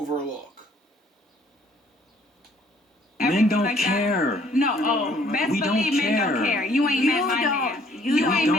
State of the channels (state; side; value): normal; both; correlation 0.61